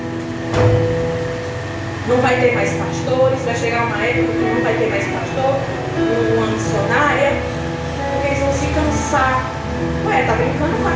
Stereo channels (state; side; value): identical; both; correlation 1.00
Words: Não vai ter mais pastores, vai chegar uma época que não vai ter mais pastor, uma missionária, porque eles vão se cansar. Ué, tá brincando com a